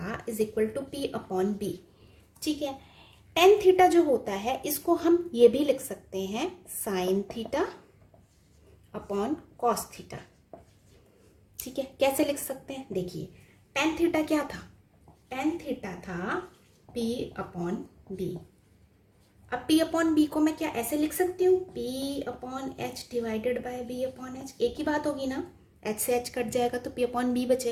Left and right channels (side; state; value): both; identical; correlation 1.00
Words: is equal to P upon B. ठीक है, टेन थीटा जो होता है इसको हम ये भी लिख सकते हैं sign theta upon cos theta. ठीक है, कैसे लिख सकते हैं, देखिए टेन थीटा क्या था, टेन थीटा था पी अपॉन बी। अब पी अपॉन बी को मैं क्या ऐसे लिख सकती हूँ, P upon H divided by B upon H, एक ही बात होगी ना, एच से एच कट जाएगा तो पी अपॉन बी